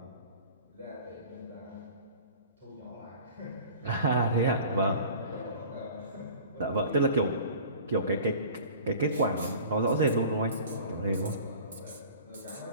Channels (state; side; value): inverted; both; correlation -0.43